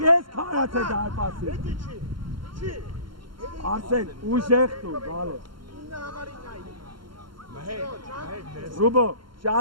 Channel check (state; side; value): late; left; 0.73 ms